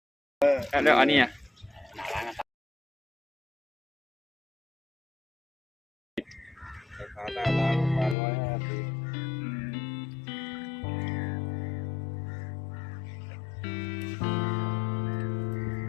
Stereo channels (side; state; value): right; drops out; at 8.2 s